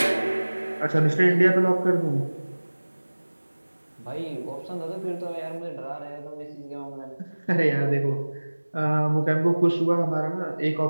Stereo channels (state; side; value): inverted; both; correlation -1.00